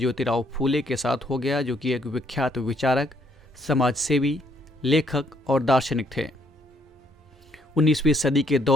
फूले के साथ हो गया, जो कि एक विख्यात विचारक, समाजसेवी, लेखक और दार्शनिक थे। 19वीं सदी के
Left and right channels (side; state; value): both; normal; correlation 0.69